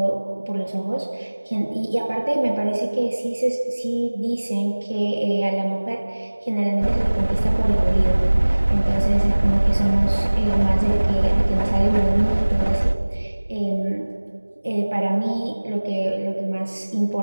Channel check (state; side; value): inverted; both; correlation -1.00